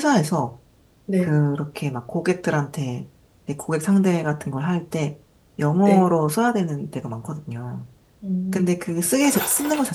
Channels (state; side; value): identical; both; correlation 1.00